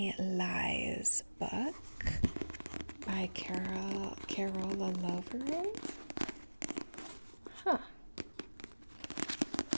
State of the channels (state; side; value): inverted; both; correlation -1.00